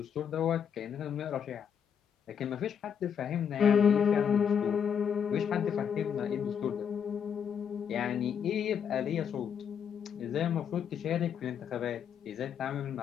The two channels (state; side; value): quieter; right; 7.8 dB